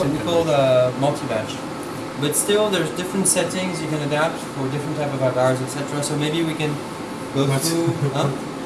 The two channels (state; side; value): identical; both; correlation 1.00